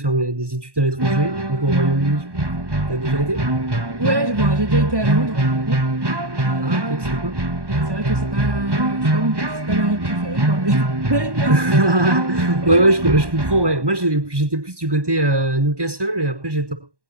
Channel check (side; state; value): left; late; 1.1 ms